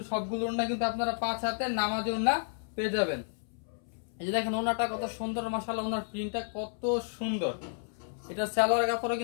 সবগুলো ওন্না কিন্তু আপনারা 5 হাতে নামাজি ওন্না পেয়ে যাবেন। এই যে দেখেন ওন্নাটা কত সুন্দর মাশাআল্লাহ, ওন্নার প্রিন্টটা কত সুন্দর। এটা সালোয়ার কাপড়ও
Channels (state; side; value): silent; right; 57 dB below the other